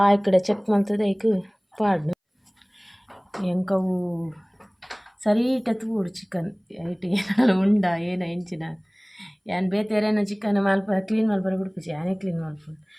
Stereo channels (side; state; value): both; identical; correlation 1.00